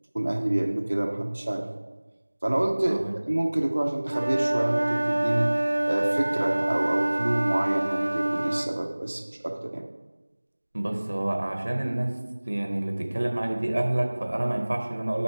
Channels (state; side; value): inverted; both; correlation -1.00